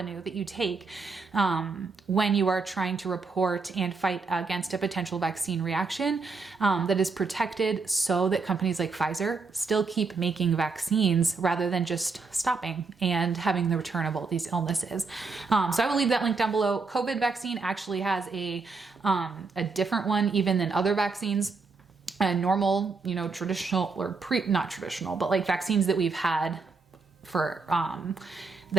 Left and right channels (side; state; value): left; quieter; 4.3 dB